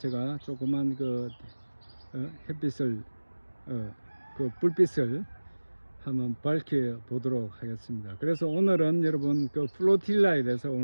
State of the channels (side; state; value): both; inverted; correlation -1.00